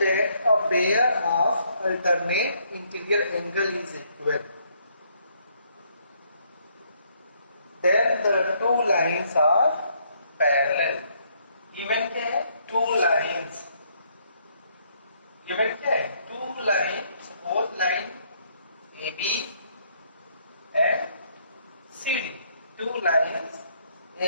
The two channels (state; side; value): inverted; both; correlation -0.69